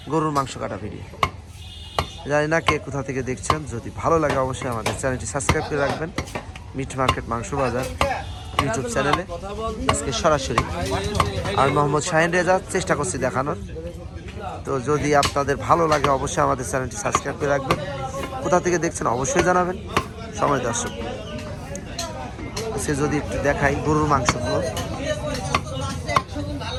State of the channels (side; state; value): both; identical; correlation 1.00